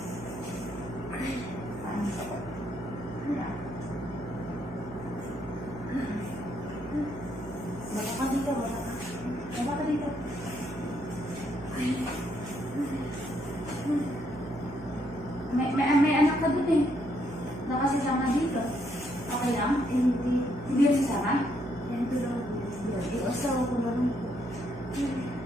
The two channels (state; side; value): noise; right; hum, 13 dB below the sound